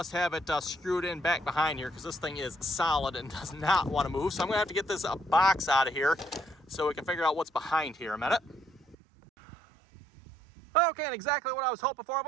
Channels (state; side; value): drops out; left; at 9.0 s